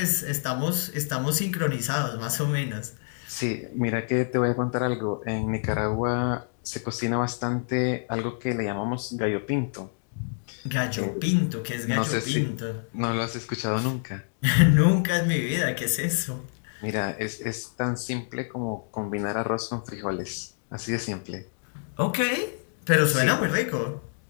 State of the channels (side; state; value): right; silent; digital silence